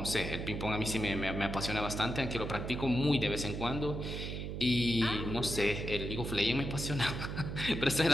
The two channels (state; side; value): noise; right; hum, 5 dB below the sound